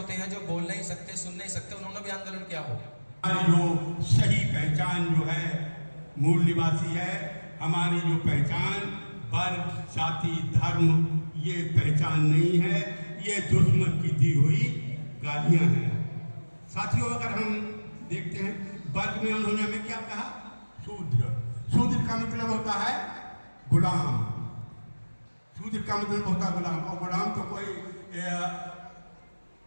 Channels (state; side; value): inverted; both; correlation -1.00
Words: हैं, जो बोल नहीं सकते, सुन नहीं सकते, उन्होंने भी आंदोलन किया हो? जो सही पहचान जो है मूल निवासी है, हमारी जो पहचान वर्ग, जाति, धर्म, ये पहचान नहीं है, ये दुश्मन की दी हुई गालियां हैं। साथियों, अगर हम देखते हैं वर्ग में उन्होंने हमें क्या कहा? शूद्र। शूद्र का मतलब होता है गुलाम। शूद्र का मतलब होता है गुलाम, और गुलाम तो कोई